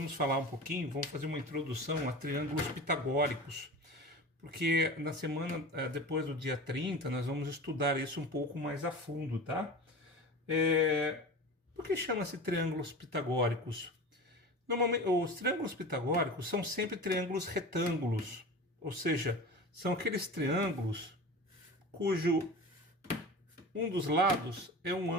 falar um pouquinho, vamos fazer uma introdução a triângulos pitagóricos, porque na semana depois do dia 30 nós vamos estudar isso um pouco mais a fundo, tá? Por que chama-se triângulos pitagóricos? Normalmente, os triângulos pitagóricos são sempre triângulos retângulos, ou seja, são aqueles triângulos cujo um dos lados é um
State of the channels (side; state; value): both; normal; correlation 0.33